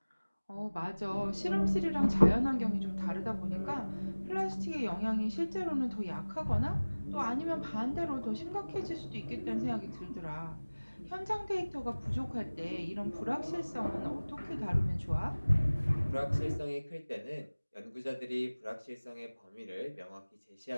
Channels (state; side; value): inverted; both; correlation -1.00